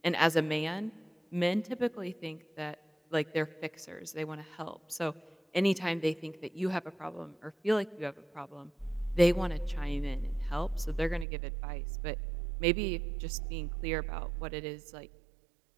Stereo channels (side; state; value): left; drops out; at 11.2 s